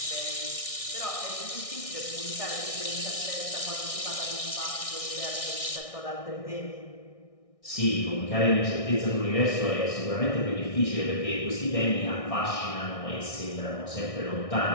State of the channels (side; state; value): right; late; 1.6 ms